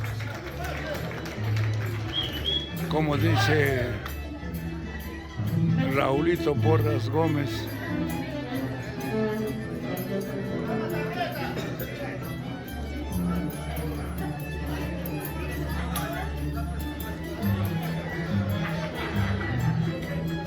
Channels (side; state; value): both; identical; correlation 1.00